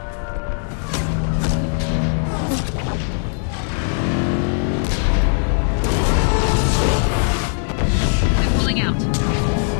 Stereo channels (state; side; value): silent; right; 66 dB below the other